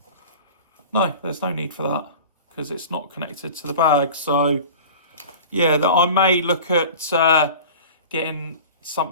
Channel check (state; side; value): inverted; both; correlation -0.38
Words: No, there's no need for that because it's not connected to the bag. So yeah, that I may look at getting